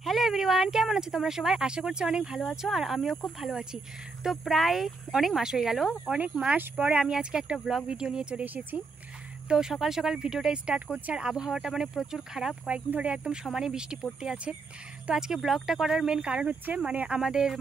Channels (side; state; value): left; quieter; 4.0 dB